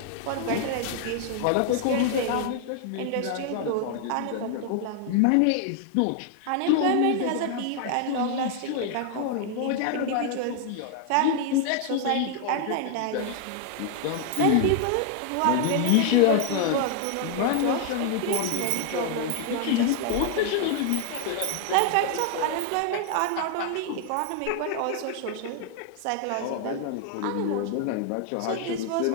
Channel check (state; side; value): different; both; correlation 0.00